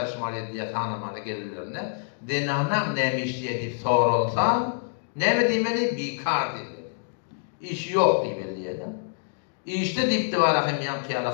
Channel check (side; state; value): right; silent; digital silence